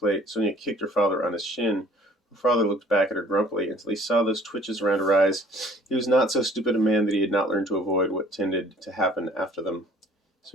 Sonia kicked her father on his shin. Her father looked back at her grumpily until he saw those twitches around her eyes. He was not so stupid a man that he had not learned to avoid what tended to happen after them.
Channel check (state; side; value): normal; both; correlation 0.53